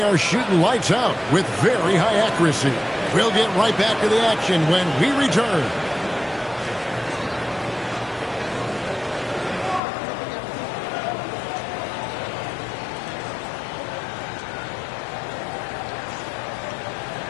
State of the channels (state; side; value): drops out; right; at 9.8 s